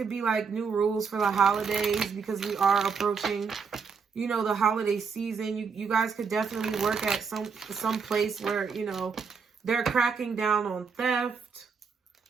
be like new rules for the holidays because we are approaching, you know, the holiday season. You guys could definitely work at some place where, you know, they're cracking down on theft.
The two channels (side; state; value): left; quieter; 5.7 dB